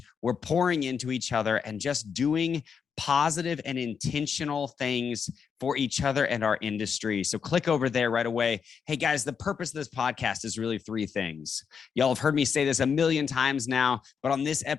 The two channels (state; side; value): quieter; right; 6.6 dB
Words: we're pouring into each other and just doing positive and intentional things for each other and our industry. So click over there right away. Hey guys, the purpose of this podcast is really 3 things. Y'all have heard me say this a million times now, but on this